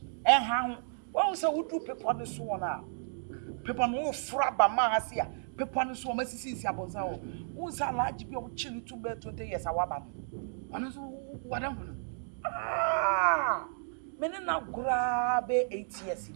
And how? Well, so would do people on the swan now. People no frabba mahasia. People on the swan, Mrs. Yabozao. Who's a large be of chili to bear 20 years? Our man. What am I? Ah, many now grab 8 years.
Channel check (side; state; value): left; silent; digital silence